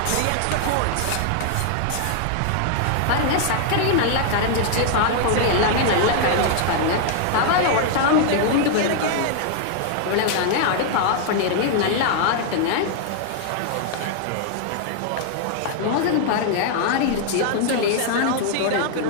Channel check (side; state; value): both; different; correlation 0.00